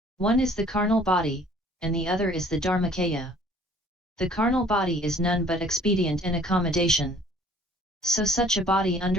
One is the carnal body, and the other is the Dharmakaya. The carnal body is none but expedient and accommodation. So such a body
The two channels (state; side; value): normal; both; correlation 0.55